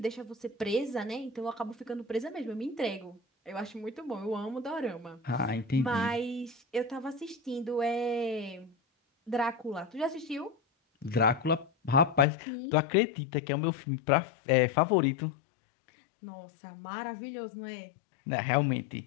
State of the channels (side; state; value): right; drops out; at 12.2 s